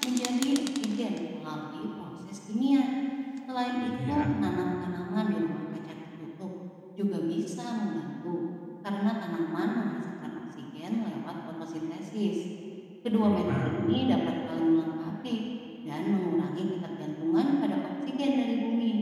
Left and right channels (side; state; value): both; identical; correlation 1.00